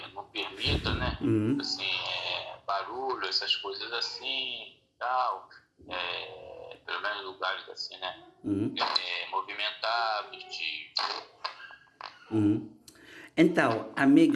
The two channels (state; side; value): identical; both; correlation 1.00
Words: não permita, né? Assim, barulho, essas coisas assim, tal, pelo menos lugares assim, né? Movimentados, Então,